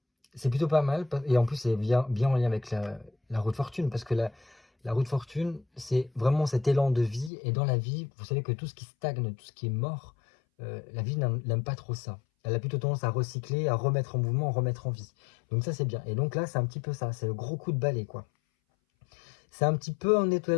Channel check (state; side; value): drops out; right; at 7.3 s